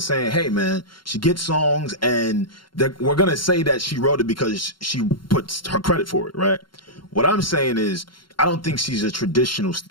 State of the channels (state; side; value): late; right; 0.73 ms